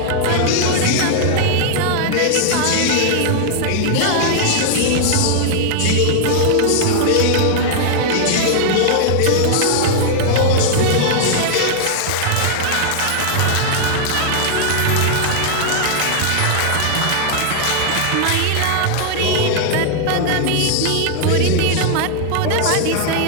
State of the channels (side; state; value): both; different; correlation 0.00